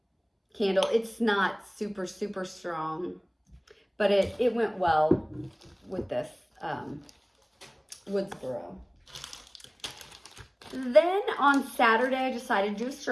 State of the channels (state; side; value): identical; both; correlation 1.00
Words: candle. It's not super, super strong, but it went well with this Woodsboro. Then on Saturday, I decided to do a